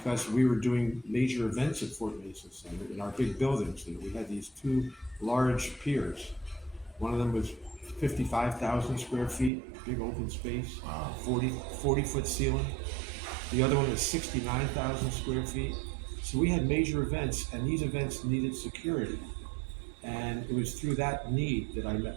we were doing major events at Fort Mason Center in our big buildings. We had these two large piers. One of them was 55,000 square feet, big open space, 40-foot ceiling. The other one was 69,000 square feet. So we had major events, and these events needed security. And it was through that need that I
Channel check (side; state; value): left; drops out; at 9.5 s